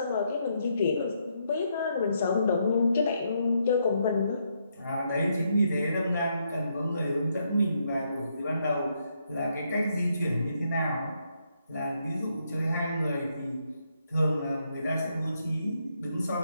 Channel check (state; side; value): inverted; both; correlation -0.77